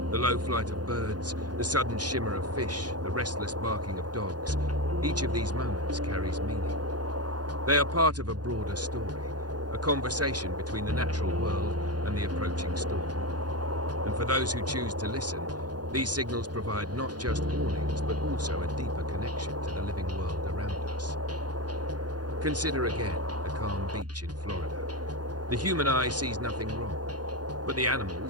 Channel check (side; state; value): left; late; 0.69 ms